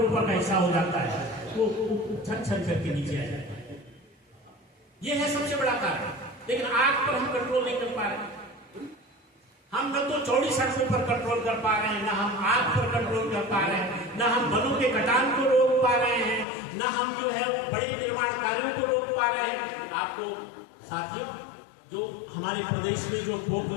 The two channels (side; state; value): right; drops out; at 16.4 s